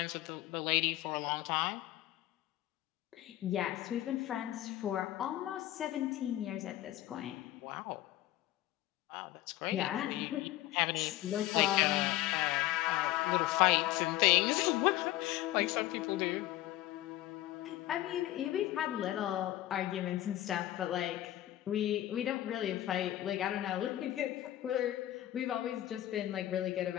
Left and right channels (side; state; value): right; quieter; 14.8 dB